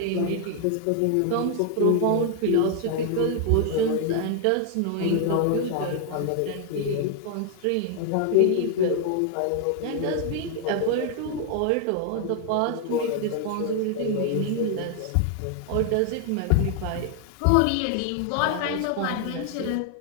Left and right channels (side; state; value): both; different; correlation 0.00